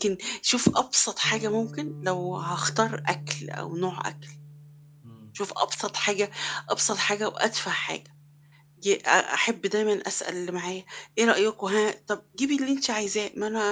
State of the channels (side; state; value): both; identical; correlation 1.00